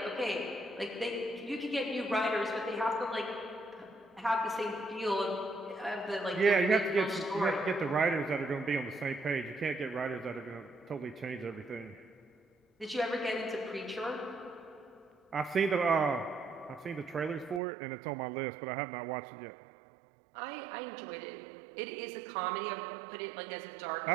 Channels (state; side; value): drops out; left; at 17.6 s